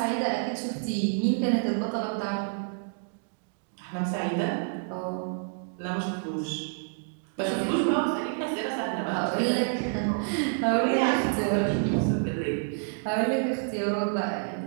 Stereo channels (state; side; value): silent; left; digital silence